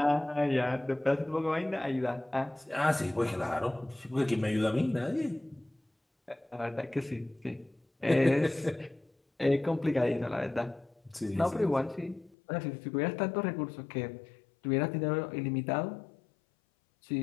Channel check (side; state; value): right; drops out; at 12.4 s